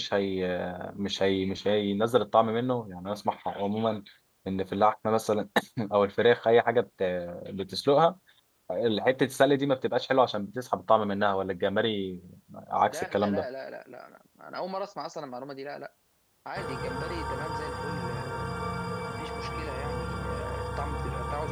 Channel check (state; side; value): identical; both; correlation 1.00